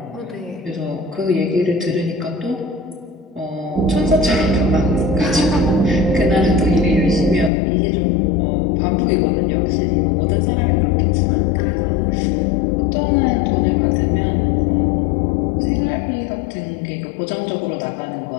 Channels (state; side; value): drops out; right; at 7.5 s